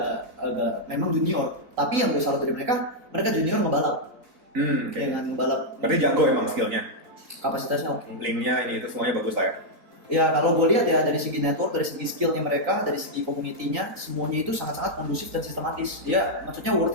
agak memang junior. Tapi yang gue salut dari mereka junior ngebalap. Dengan balap. Berarti jago emang skillnya. Kapasitasnya oke. Linknya ini itu semuanya bagus lah ya. Ya kalau gue lihat ya dari segi network, dari segi skillnya mereka, dari segi community-nya, semuanya itu sangat-sangat kondusif dan sistematis. Dia maksudnya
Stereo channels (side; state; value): left; late; 3.8 ms